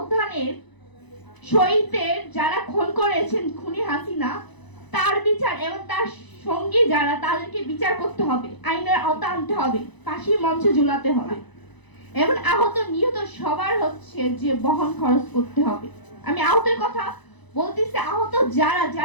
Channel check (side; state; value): right; late; 1.0 ms